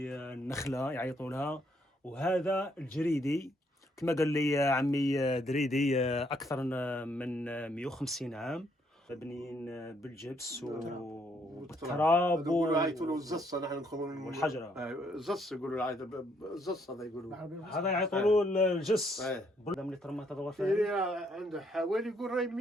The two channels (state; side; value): normal; both; correlation 0.71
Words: النخلة يعيطوا لها، وهذا الجريدي كما قال لي عمي دريدي أكثر من 150 عام، مبنيين بالجبس والتراب يقولوا عيطوا له الزصه، نحن نقولوا والحجرة. الزص يقولوا له الزص، هذا يقولوا هذا يعيطوا له الجس. هذا ملي ترمات هذا الغرفة عنده حوالي يقول راهي